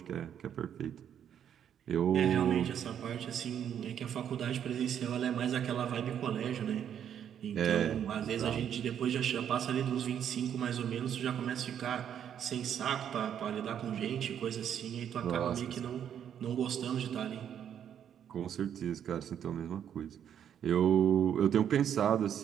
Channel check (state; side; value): quieter; left; 9.2 dB